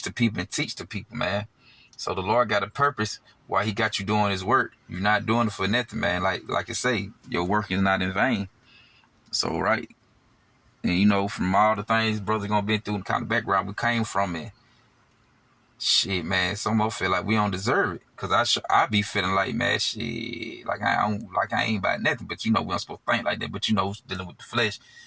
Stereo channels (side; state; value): both; identical; correlation 1.00